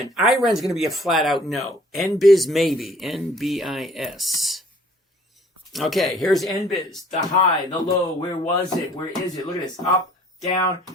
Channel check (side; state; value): both; normal; correlation 0.56